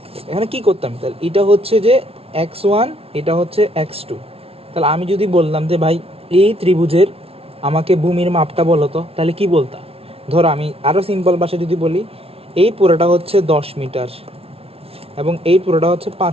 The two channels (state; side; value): late; left; 0.28 ms